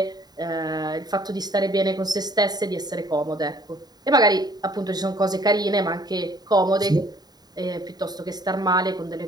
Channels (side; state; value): left; late; 0.19 ms